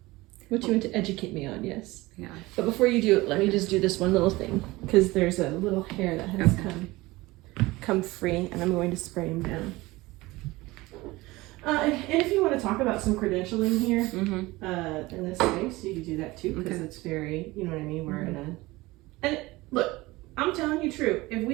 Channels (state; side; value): quieter; left; 20.4 dB